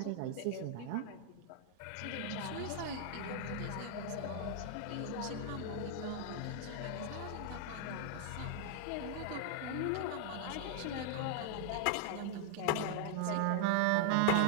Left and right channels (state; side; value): different; both; correlation -0.01